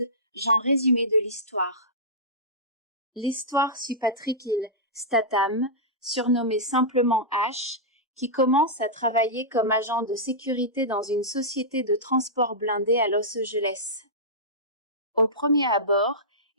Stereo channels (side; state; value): both; normal; correlation -0.14